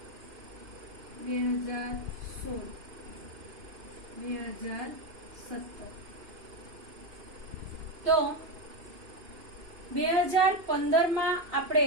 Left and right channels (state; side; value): late; left; 2.9 ms